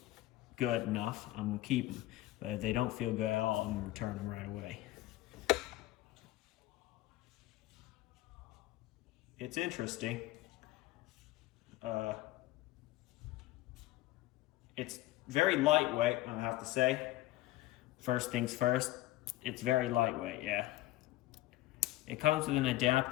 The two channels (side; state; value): right; quieter; 16.5 dB